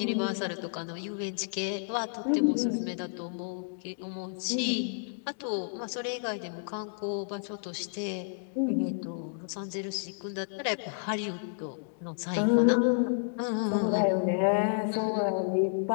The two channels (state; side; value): silent; right; digital silence